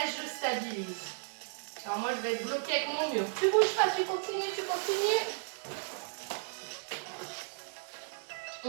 je stabilise. Alors moi, je vais être bloquée avec mon mur. Tu bouges pas, tu continues, tu continues.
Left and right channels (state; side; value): silent; left; digital silence